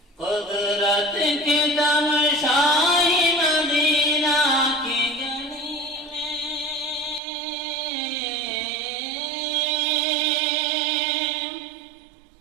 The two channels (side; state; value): left; drops out; at 7.2 s